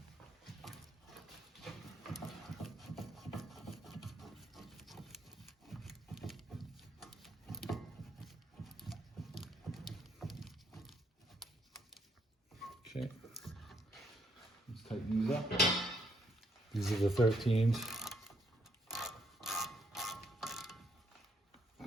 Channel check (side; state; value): both; normal; correlation 0.72